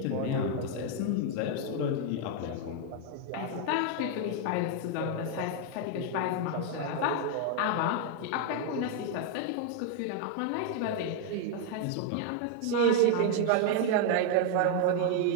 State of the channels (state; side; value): different; both; correlation 0.00